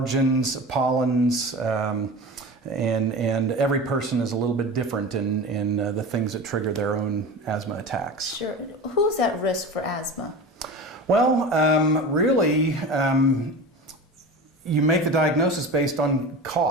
pollens, and every person is a little bit different in the things that trigger their own asthma attacks. Sure. Who's at risk for asthma? Well, really, you make the diagnosis based on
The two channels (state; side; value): normal; both; correlation 0.31